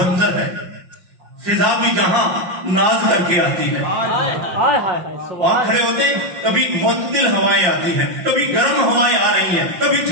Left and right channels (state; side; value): late; left; 5.6 ms